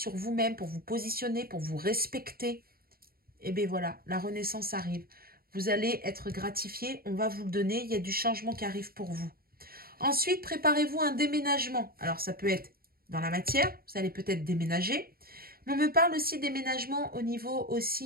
vous-même pour vous positionner, pour vous respecter. Et bien voilà, la renaissance arrive. Vous allez être gratifié, on va vous le donner, il y a du changement qui arrive pour vous. Ensuite, préparez-vous un déménagement. Alors, ça peut être dans la matière, vous allez peut-être déménager. Mais on me parle aussi de déménagement au niveau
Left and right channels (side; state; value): left; late; 0.43 ms